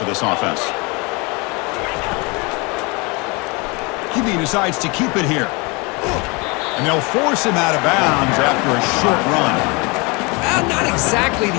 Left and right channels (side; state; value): right; quieter; 28.2 dB